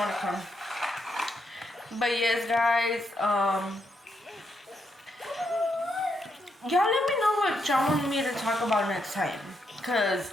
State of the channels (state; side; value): normal; both; correlation 0.80